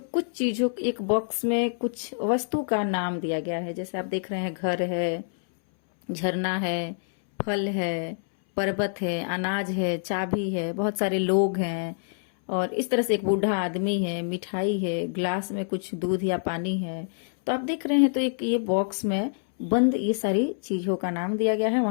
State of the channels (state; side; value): silent; right; 61 dB below the other